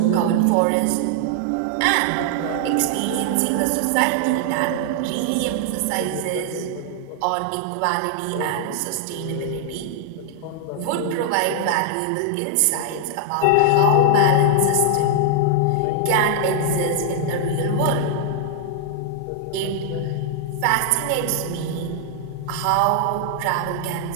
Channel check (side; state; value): both; different; correlation 0.00